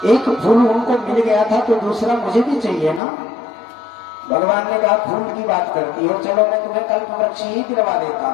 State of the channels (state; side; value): drops out; right; at 3.0 s